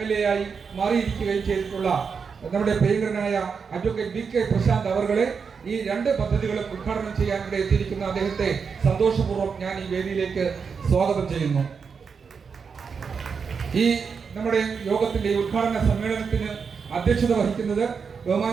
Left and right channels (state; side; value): quieter; left; 5.8 dB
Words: ആയി മാറിയിരിക്കുകയും ചെയ്തിട്ടുള്ള നമ്മുടെ പ്രിയങ്കരനായ അഡ്വക്കേറ്റ് BK പ്രശാന്ത് അവർകളെ ഈ 2 പദ്ധതികളും ഉദ്ഘാടനം ചെയ്യാൻ ഇവിടെ എത്തിയിരിക്കുന്ന അദ്ദേഹത്തെ സന്തോഷപൂർവ്വം ഞാൻ ഈ വേദിയിലേക്ക് സ്വാഗതം ചെയ്യുന്നു. ഈ നമ്മുടെ യോഗത്തിന്റെ ഉദ്ഘാടന സമ്മേളനത്തിന് അധ്യക്ഷത വഹിക്കുന്നത്